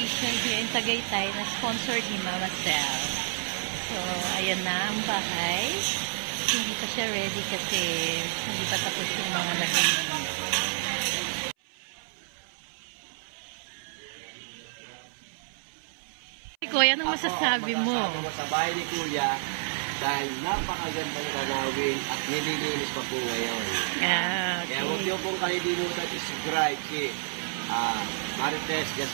here in Tagaytay na sponsored ni Mama Sel. So, ayan na ang bahay. Hindi pa siya ready kasi hindi pa tapos yung mga naging. Kuya, anong masasabi mo? Sa bahay ni Kuya, dahil napakagandang tanawin at nililinis pa po ngayon. Yeah, okay. Kaya huwag niyo pong kalilimutan i-subscribe si Marites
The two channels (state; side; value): silent; left; 58 dB below the other